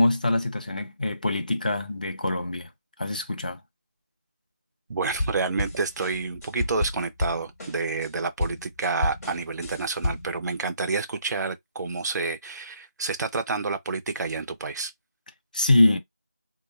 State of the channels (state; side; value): inverted; both; correlation -0.72